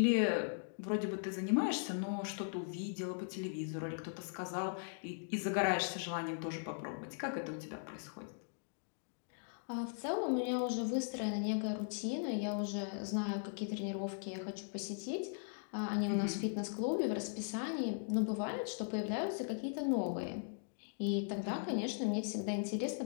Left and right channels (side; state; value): right; silent; digital silence